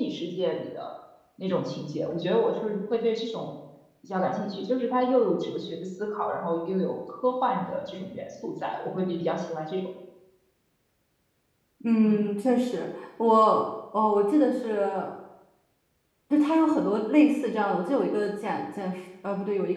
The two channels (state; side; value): identical; both; correlation 1.00